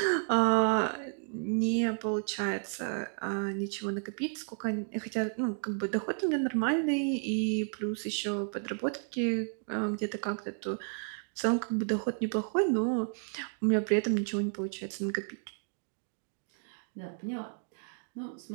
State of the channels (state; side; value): silent; left; 56 dB below the other